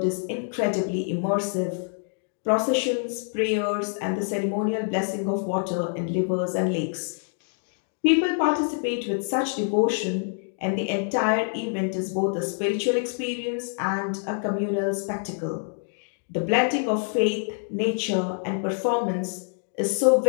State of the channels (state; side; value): silent; right; 61 dB below the other